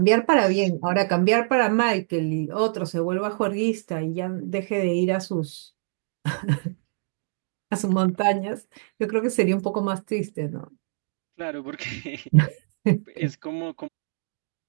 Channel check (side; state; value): left; silent; digital silence